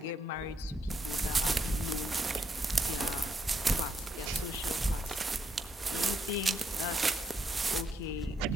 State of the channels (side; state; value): both; normal; correlation 0.77